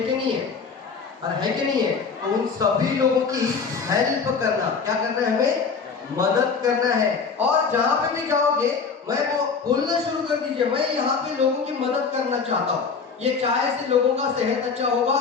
कि नहीं है, और है कि नहीं है, तो उन सभी लोगों की हेल्प करना, क्या करना है, हमें मदद करना है। और जहां पे भी जाओगे मैं वो बोलना शुरू कर दीजिए, मैं यहाँ पे लोगों की मदद करना चाहता हूँ, ये चाय से लोगों का सेहत अच्छा होगा,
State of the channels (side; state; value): right; quieter; 5.4 dB